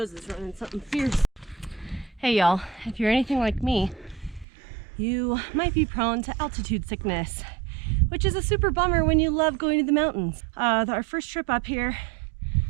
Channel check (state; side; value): drops out; left; at 4.5 s